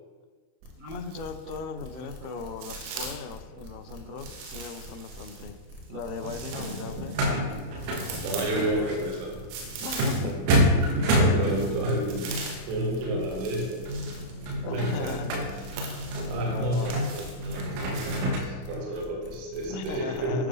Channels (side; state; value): left; late; 32 ms